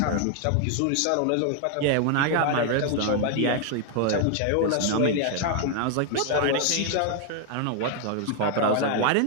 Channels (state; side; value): different; both; correlation 0.00